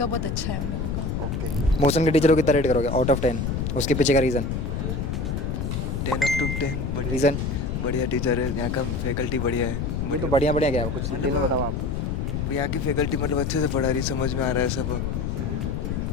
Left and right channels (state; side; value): noise; left; rumble, 1 dB below the sound